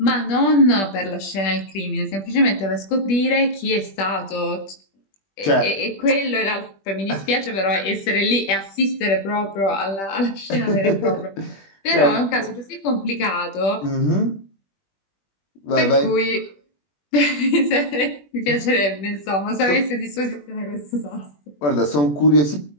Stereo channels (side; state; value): right; late; 20 ms